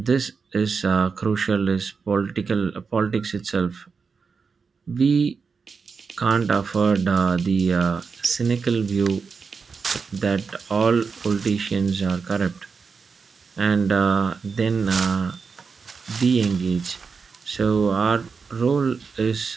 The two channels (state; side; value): quieter; left; 5.2 dB